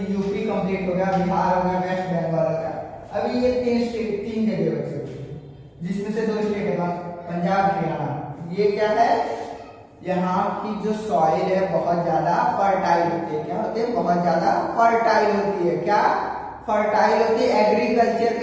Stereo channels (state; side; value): identical; both; correlation 1.00